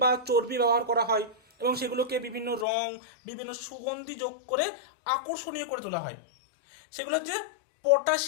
বা চর্বি ব্যবহার করা হয় এবং সেগুলোকে বিভিন্ন রং, বিভিন্ন সুগন্ধি যোগ করে আকর্ষণীয় করে তোলা হয়। সেগুলো হচ্ছে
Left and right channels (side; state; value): right; drops out; at 2.7 s